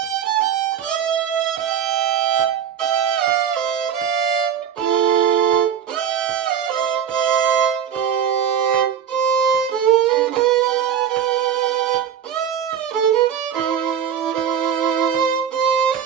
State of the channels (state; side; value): quieter; left; 8.6 dB